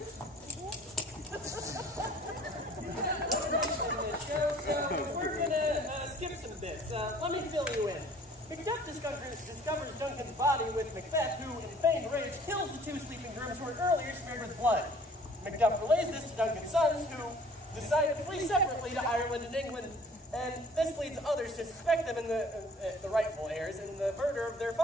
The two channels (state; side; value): normal; both; correlation 0.53